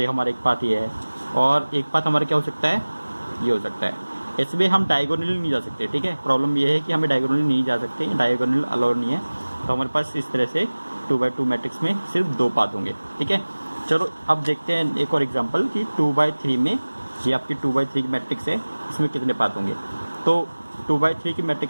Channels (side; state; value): both; inverted; correlation -1.00